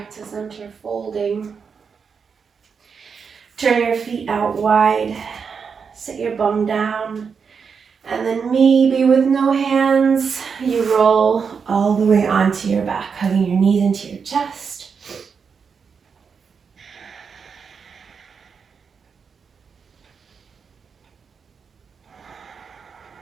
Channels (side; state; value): left; quieter; 6.0 dB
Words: to center, folding. Turn your feet out wide. Sit your bum down. And then maybe with no hands, you roll all the way onto your back, hugging your knees into your chest.